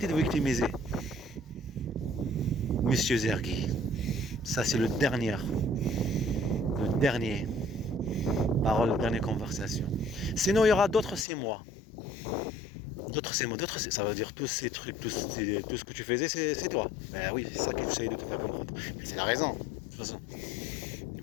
de victimiser. Monsieur Zergui, ça c'est le dernier parole, la dernière conversation. Sinon, il y aura d'autres c'est moi. D'autres c'est moi, ça veut dire tous ces trucs, tout ce que tu faisais, c'est toi. Ben oui, c'est ça que j'essaye de te faire comprendre. Mais c'est la raison, de toute façon.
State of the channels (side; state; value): right; drops out; at 11.2 s